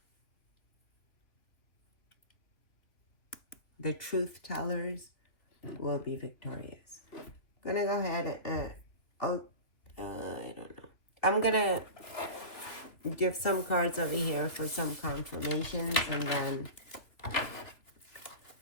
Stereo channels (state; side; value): late; right; 2.6 ms